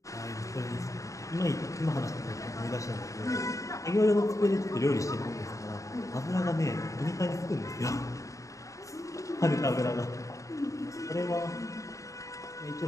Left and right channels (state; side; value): late; right; 0.16 ms